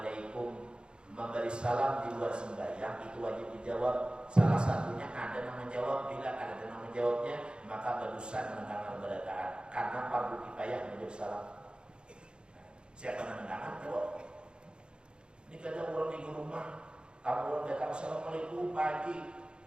Memberi salam di luar sembahyang itu wajib dijawab. Salah satunya ada yang menjawab. Bila ada yang menjawabnya, maka berdosa mendengar berataan. Karena fardu kifayah menjawab salam. Siapa yang mendengar jawab. Ini kadang orang di rumah, kamu orang datang assalamualaikum pagi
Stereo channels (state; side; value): late; left; 0.051 ms